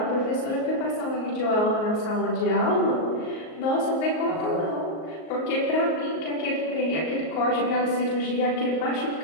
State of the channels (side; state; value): right; late; 38 ms